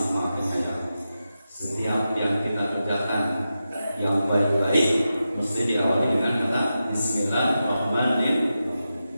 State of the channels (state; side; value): inverted; both; correlation -0.91